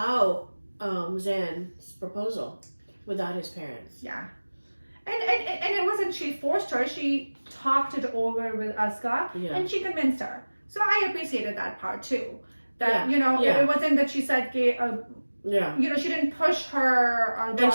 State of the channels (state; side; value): inverted; both; correlation -1.00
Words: Zaan's proposal without his parents. Yeah. And it wasn't she forced her. She talked it over with Aska, and she convinced her. So I appreciated that part too. That it wasn't that she said, she didn't push her. And